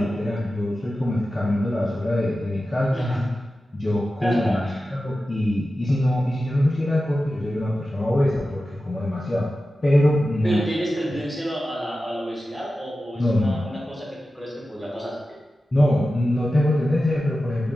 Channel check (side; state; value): both; normal; correlation 0.93